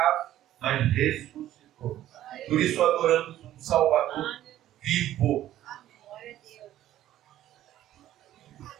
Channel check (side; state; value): left; quieter; 13.0 dB